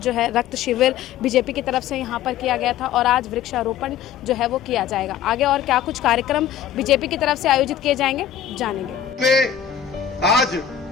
है रक्त शिविर बीजेपी की तरफ से यहाँ पर किया गया था और आज वृक्षारोपण जो है वो किया जाएगा। आगे और क्या कुछ कार्यक्रम बीजेपी की तरफ से आयोजित किए जाएंगे, जानेंगे। आज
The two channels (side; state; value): right; quieter; 9.4 dB